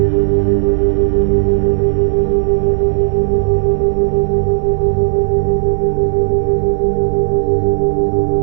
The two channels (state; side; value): silent; left; digital silence